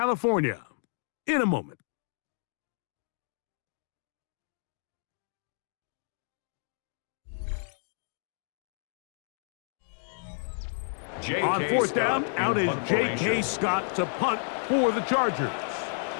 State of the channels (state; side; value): silent; right; digital silence